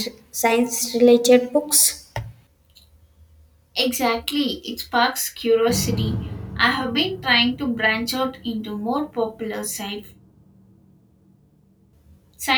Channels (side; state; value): both; identical; correlation 1.00